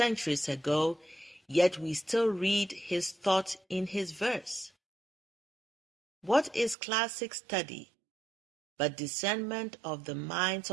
ago, yet we still read his thought in his verse. What is classic study but discernment of the minds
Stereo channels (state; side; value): drops out; left; at 6.8 s